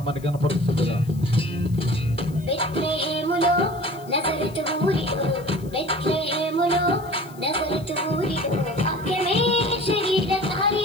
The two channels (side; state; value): left; noise; hiss, 24 dB below the sound